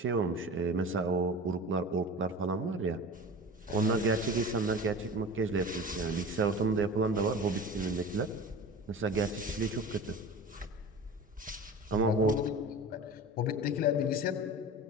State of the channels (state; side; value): normal; both; correlation 0.34